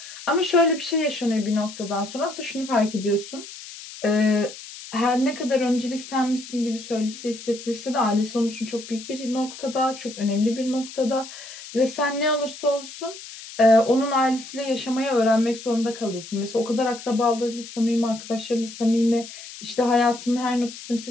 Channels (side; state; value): left; noise; hiss, 14 dB below the sound